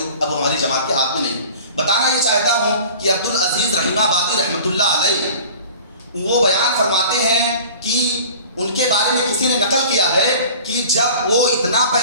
اب ہماری جماعت کے ہاتھ میں نہیں. بتانا یہ چاہتا ہوں کہ عبدالعزیز رحیم آبادی رحمۃ اللہ علیہ وہ بیان فرماتے ہیں کہ ان کے بارے میں کسی نے نقل کیا ہے کہ جب وہ اتنا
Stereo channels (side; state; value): both; inverted; correlation -0.43